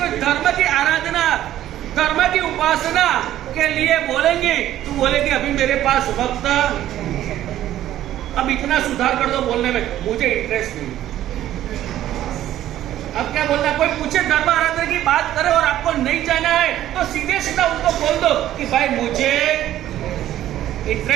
धर्म की आराधना, धर्म की उपासना के लिए बोलेंगे तो बोलेंगे अभी मेरे पास वक्त, अब इतना सुधार कर दो बोलने में, मुझे इंटरेस्ट नहीं। अब क्या बोलना, कोई पूछे धर्म आराधना की बात करे और आपको नहीं जाना है तो सीधे सीधा उनको बोल दो कि भाई मुझे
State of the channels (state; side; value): quieter; left; 12.8 dB